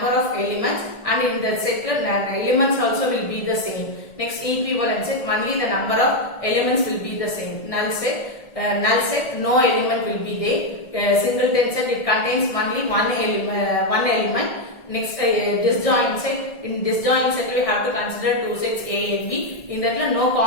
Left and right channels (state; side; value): late; right; 1.6 ms